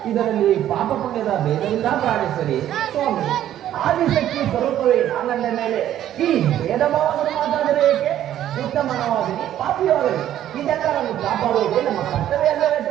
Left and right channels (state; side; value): quieter; left; 11.7 dB